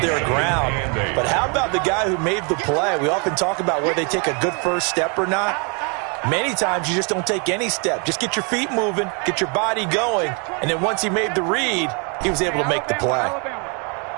their ground. But how about the guy who made the play? We often talk about where they take a good first step or not. Many times you just don't take any step. Just get your feet moving, get your body going, and then once he made the read, he was able to make the play.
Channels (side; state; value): left; quieter; 35.0 dB